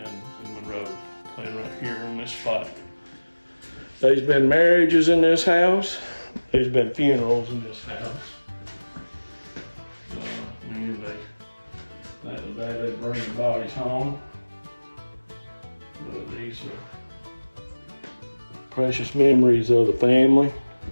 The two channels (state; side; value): inverted; both; correlation -1.00